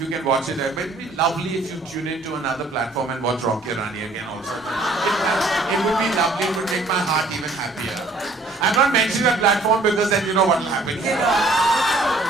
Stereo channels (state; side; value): quieter; left; 3.1 dB